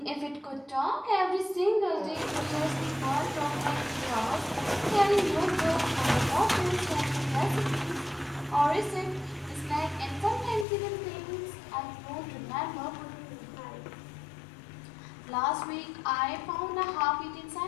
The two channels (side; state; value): right; drops out; at 10.7 s